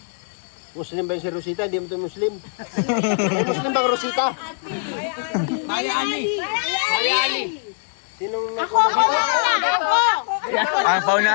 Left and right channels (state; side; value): silent; right; 56 dB below the other